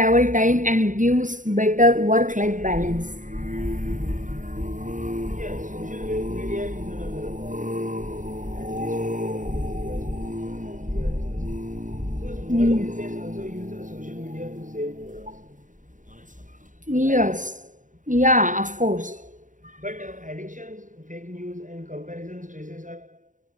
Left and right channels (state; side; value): late; left; 0.37 ms